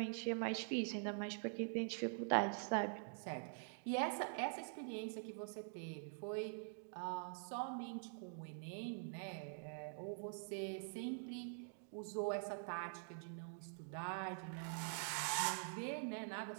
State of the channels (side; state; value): left; silent; digital silence